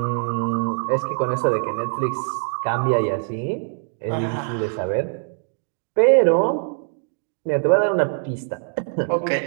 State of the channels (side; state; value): left; silent; 64 dB below the other